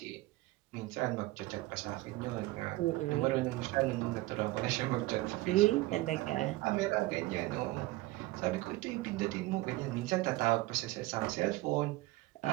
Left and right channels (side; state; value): left; quieter; 19.2 dB